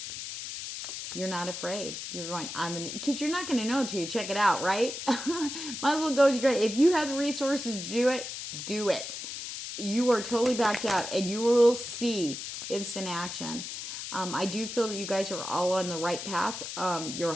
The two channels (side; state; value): left; noise; hiss, 7 dB below the sound